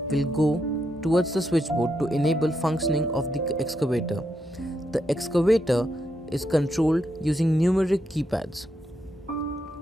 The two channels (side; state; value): both; normal; correlation 0.81